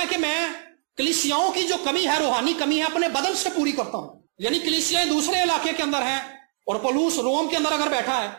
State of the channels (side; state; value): left; silent; 63 dB below the other